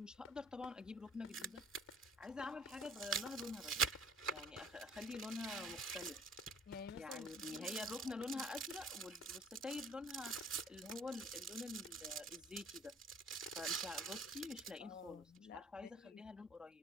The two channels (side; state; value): both; normal; correlation 0.54